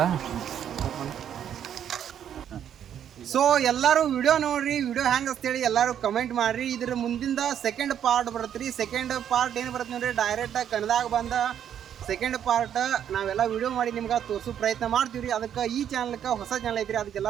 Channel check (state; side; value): quieter; left; 9.5 dB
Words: ಸೊ ಎಲ್ಲರೂ ವಿಡಿಯೋ ನೋಡ್ರಿ ವಿಡಿಯೋ ಹೆಂಗೆ ಅಂತೇಳಿ ಎಲ್ಲರೂ ಕಮೆಂಟ್ ಮಾಡ್ರಿ ಇದ್ರ ಮುಂದಿಂದ ಸೆಕೆಂಡ್ ಪಾರ್ಟ್ ಬರುತ್ತೆ ರೀ ಸೆಕೆಂಡ್ ಪಾರ್ಟ್ ಏನು ಬರುತ್ತೆ ನೋಡ್ರಿ ಡೈರೆಕ್ಟ್ ಕನ್ನಡದಾಗ ಬಂದ ಸೆಕೆಂಡ್ ಪಾರ್ಟ್ ನಾವೆಲ್ಲ ವಿಡಿಯೋ ಮಾಡಿ ನಿಮ್ಗೆ ತೋರಿಸೋ ಪ್ರಯತ್ನ ಮಾಡ್ತೀವಿ ರೀ ಅದಕ್ಕೆ ಈ ಚಾನಲ್ಗೆ ಹೊಸ ಚಾನಲ್ ಐತ್ರಿ ಅದಕ್ಕೆ